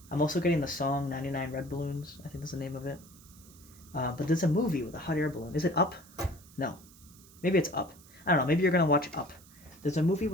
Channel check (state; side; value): noise; right; hiss, 24 dB below the sound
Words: I'm also getting the song 99 Red Balloons. I think that's the name of it. But there's a movie with a hot air balloon. Is it Up? No. Maybe it's Up. I don't know. Maybe you're going to watch Up. There's a movie